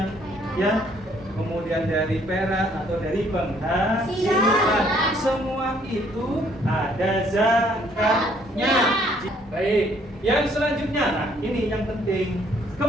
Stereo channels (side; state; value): both; normal; correlation 0.64